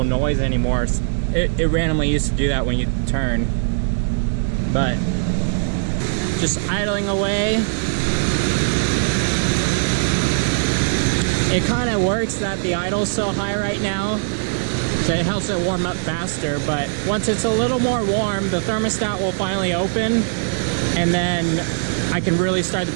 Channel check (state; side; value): silent; left; digital silence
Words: noise anymore. It randomly used to do that when you turn. But just idling away. It kind of works that the idle's so high right now, so it helps it warm up faster. But once it's a little more warm, the thermostat will finally open, and then I can really start the